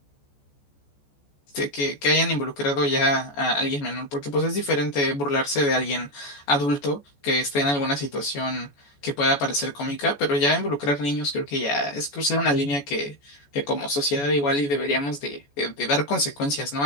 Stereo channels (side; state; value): right; late; 14 ms